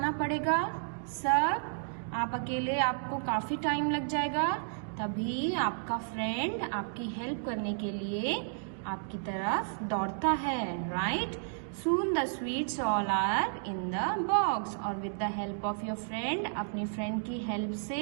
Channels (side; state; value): left; silent; digital silence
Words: पड़ेगा सब। आप अकेले आपको काफी टाइम लग जाएगा। तभी आपका फ्रेंड आपकी हेल्प करने के लिए आपकी तरफ दौड़ता है, right? Soon the sweets all are in the box. और with the help of your friend, अपनी फ्रेंड की हेल्प